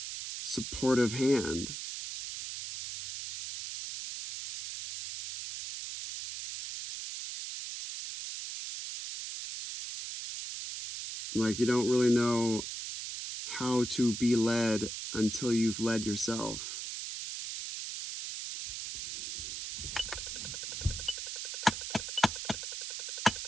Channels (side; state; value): right; noise; hiss, 6 dB below the sound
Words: supportive hand. Like, you don't really know how to be led until you've led yourself.